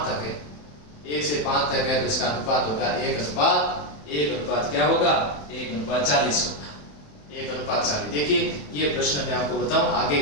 तक है, 1 से 5 तक है तो इसका अनुपात होगा 1:1 क्या होगा? 1:40 होगा, 1:40। देखिए ये प्रश्न मैं आपको बताऊं, आगे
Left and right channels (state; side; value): late; right; 27 ms